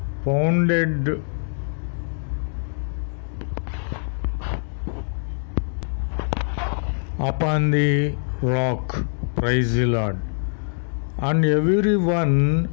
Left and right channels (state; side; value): silent; right; digital silence